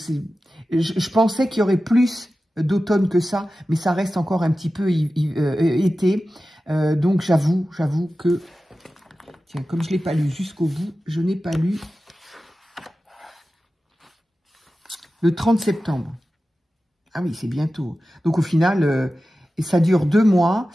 Je pensais qu'il y aurait plus d'automne que ça, mais ça reste encore un petit peu été. Donc, j'avoue que... Tiens, comme je ne l'ai pas lu jusqu'au bout, je n'ai pas lu le 30 septembre. Ah oui, c'est bientôt. Donc, au final, ça dure 2 mois,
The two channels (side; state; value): both; normal; correlation 0.94